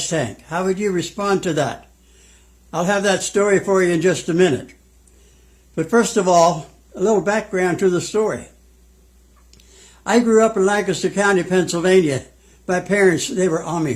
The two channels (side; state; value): both; identical; correlation 1.00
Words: tank? How would you respond to that? I'll have that story for you in just a minute. But first of all, a little background to the story. I grew up in Lancaster County, Pennsylvania. My parents, they were